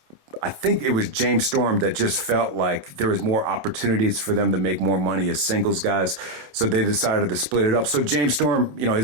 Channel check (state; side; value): late; left; 27 ms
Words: think it was James Storm that just felt like there was more opportunities for them to make more money as singles guys. So they decided to split it up. So James Storm,